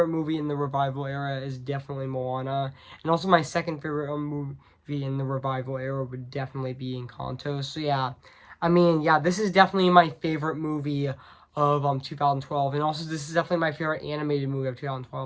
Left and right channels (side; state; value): both; identical; correlation 1.00